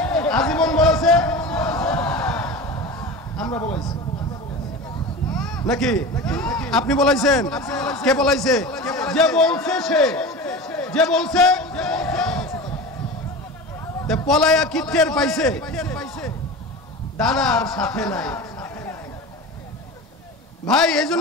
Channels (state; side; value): normal; both; correlation 0.30